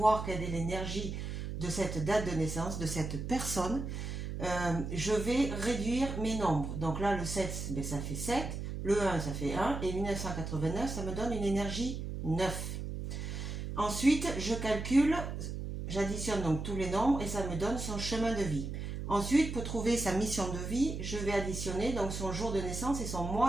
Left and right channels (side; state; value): right; noise; hum, 5 dB below the sound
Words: quelle est l'énergie de cette date de naissance, de cette personne, je vais réduire mes nombres. Donc là, le 7, ben, ça fait 7, le 1, ça fait 1, et 1989, ça me donne une énergie 9. Ensuite, je calcule, j'additionne donc tous les nombres, et ça me donne son chemin de vie. Ensuite, pour trouver sa mission de vie, je vais additionner donc son jour de naissance et son